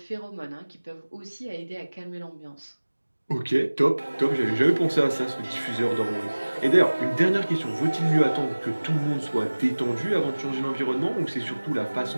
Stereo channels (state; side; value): inverted; both; correlation -1.00